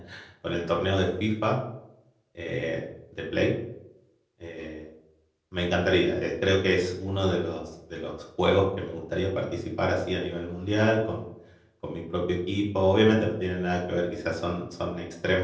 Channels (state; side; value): identical; both; correlation 1.00